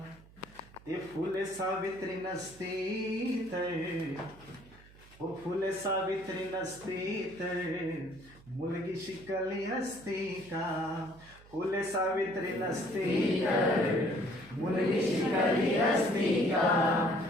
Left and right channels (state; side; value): noise; right; hum, 23 dB below the sound